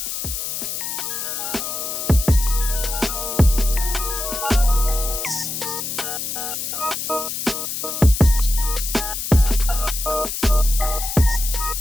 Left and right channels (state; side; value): noise; left; hiss, 4 dB below the sound